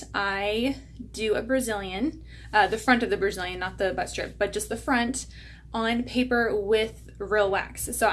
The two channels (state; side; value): identical; both; correlation 1.00